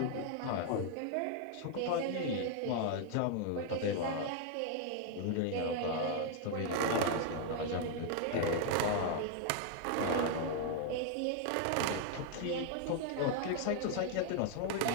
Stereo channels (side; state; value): both; different; correlation 0.00